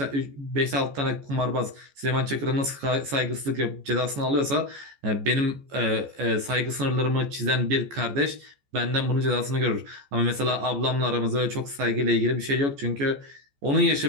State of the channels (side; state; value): left; late; 14 ms